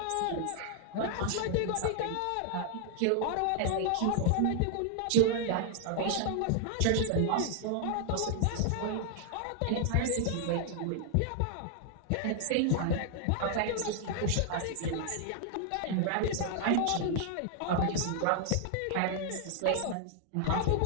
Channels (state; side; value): different; both; correlation 0.00